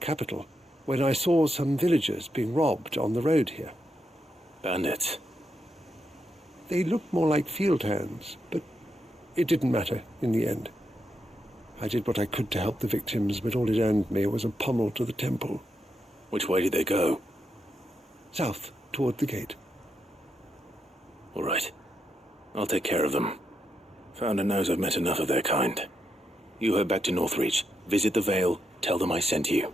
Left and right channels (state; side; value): normal; both; correlation 0.82